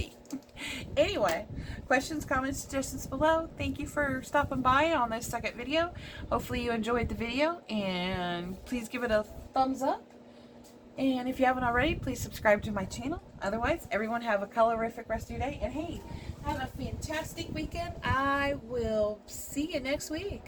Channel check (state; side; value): identical; both; correlation 1.00